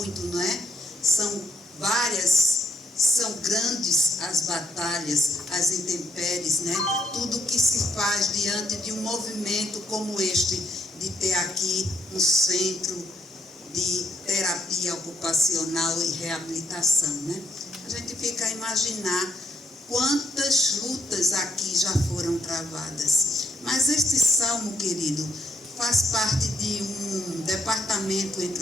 não é? São grandes as batalhas, as intempéries, né? Tudo que se faz diante de um movimento como este, de ter aqui um centro de terapia ocupacional e reabilitação, né? A gente fica a imaginar quantas lutas aqui já foram travadas. Mas este salmo, querido, faz parte de um departamento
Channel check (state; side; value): normal; both; correlation 0.73